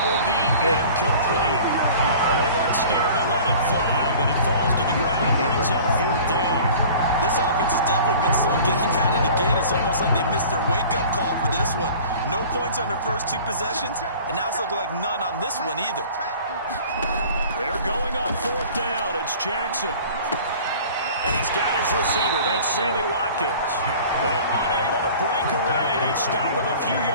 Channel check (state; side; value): inverted; both; correlation -0.44